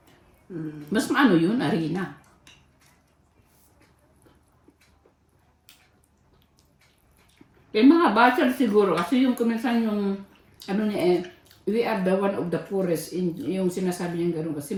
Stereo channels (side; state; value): both; identical; correlation 1.00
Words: Mas maano yun, harina. Yung mga bachelor siguro, kasi yung kuminsan yung, we are the one of the poorest, yung sinasabi niya gano'n, kasi